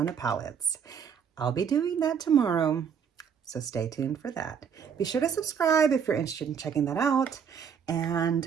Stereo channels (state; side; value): quieter; left; 7.3 dB